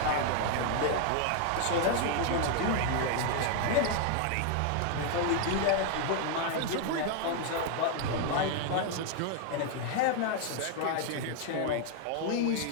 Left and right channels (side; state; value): both; different; correlation 0.00